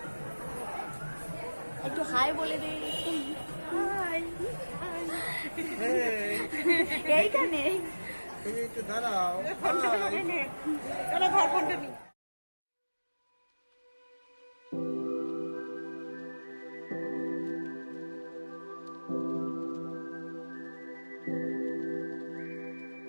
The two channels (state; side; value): inverted; both; correlation -1.00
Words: একটু হাই বলে দিই। এইখানে দাঁড়াও।